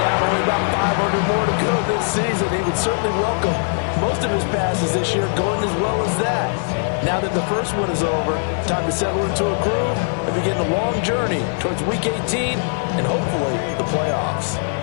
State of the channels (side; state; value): right; silent; 65 dB below the other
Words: only about 500 more to go this season. He would certainly welcome most of his passes this year going as well as that. Now that the first one is over, time to settle into a groove and begin the long journey towards Week 18 and hopefully the playoffs.